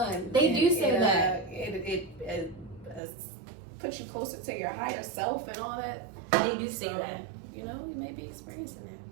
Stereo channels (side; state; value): left; drops out; at 3.0 s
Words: They do say that. It puts you closer to your higher self and all that. They do say that. You know, you may be experiencing that.